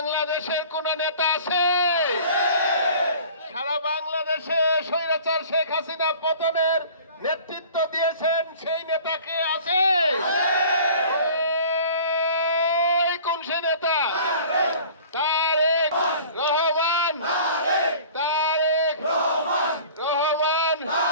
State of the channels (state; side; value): inverted; both; correlation -0.46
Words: কোন নেতা আছে? সারা বাংলাদেশে স্বৈরাচার শেখ হাসিনা পতনের নেতৃত্ব দিয়েছেন সেই নেতা কে আছে? কোন সে নেতা? তারেক রহমান। তারেক রহমান।